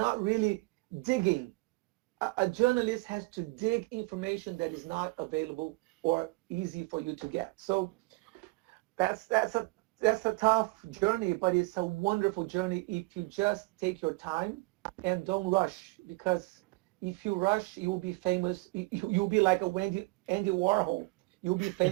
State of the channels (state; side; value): quieter; left; 25.6 dB